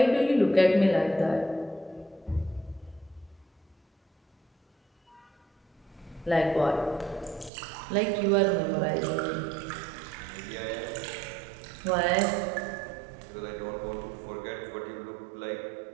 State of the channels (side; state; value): left; drops out; at 7.5 s